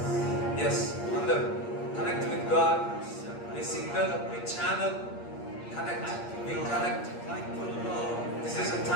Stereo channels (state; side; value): late; right; 8.6 ms